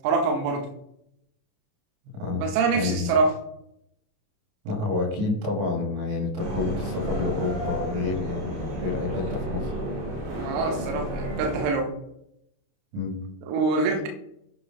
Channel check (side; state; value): left; late; 29 ms